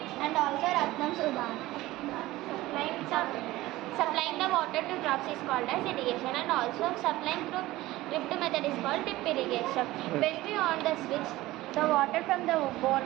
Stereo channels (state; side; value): quieter; left; 17.7 dB